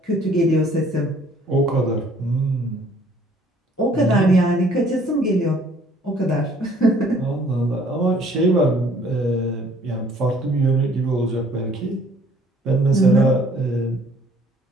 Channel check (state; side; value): normal; both; correlation 0.58